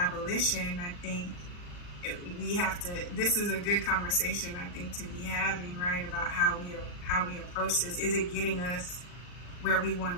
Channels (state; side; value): late; right; 39 ms